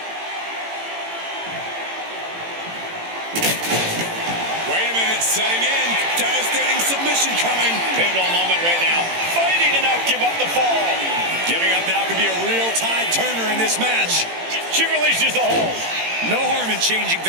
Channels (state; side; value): late; left; 18 ms